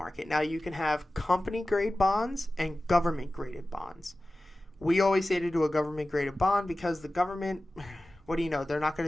Now, you can have company-grade bonds and government-graded bonds. We always say to do a government-graded bond because the government, what do you know, they're not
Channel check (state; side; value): normal; both; correlation 0.96